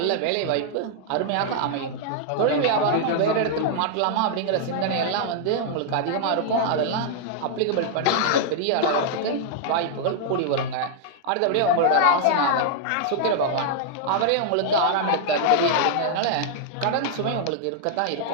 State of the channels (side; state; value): both; different; correlation -0.01